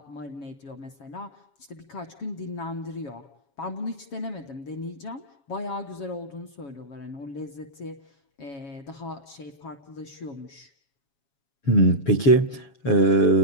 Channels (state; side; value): late; right; 7.3 ms